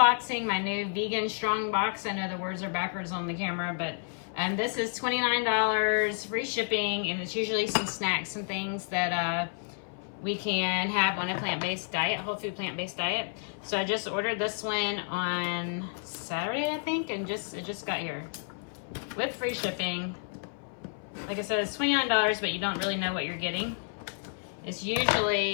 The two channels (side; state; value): right; silent; 58 dB below the other